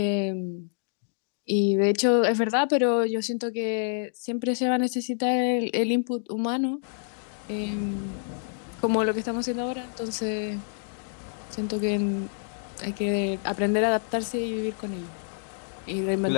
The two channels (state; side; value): silent; right; digital silence